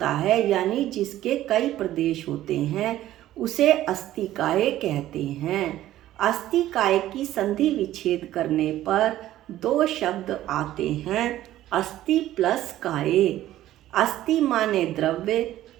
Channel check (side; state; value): left; quieter; 13.9 dB